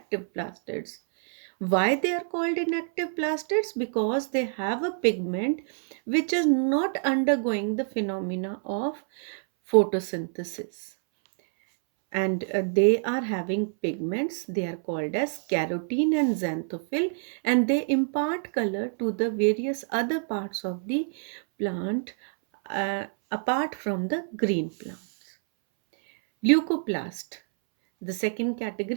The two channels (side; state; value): left; silent; 60 dB below the other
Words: plastids. Why they are called inactive plastids? Because they have a pigment which is not undergoing the phenomena of photosynthesis, and they are having pigments. They are called as carotene and xanthophyll, and they impart color to the various other parts of the plant apart from the green plants. Leucoplast, the second